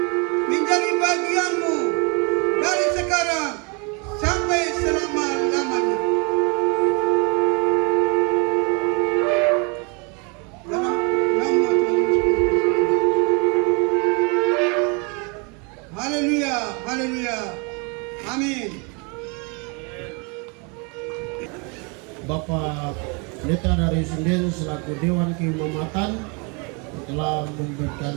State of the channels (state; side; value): quieter; left; 33.0 dB